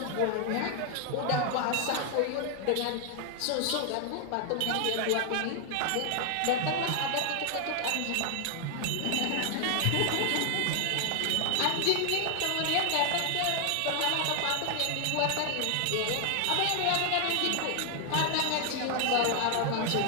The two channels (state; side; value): different; both; correlation 0.00